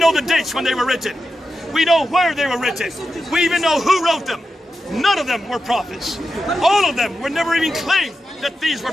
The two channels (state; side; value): normal; both; correlation 0.90